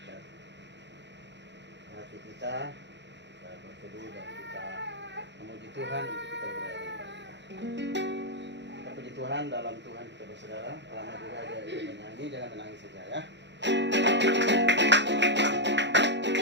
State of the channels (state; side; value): late; left; 0.52 ms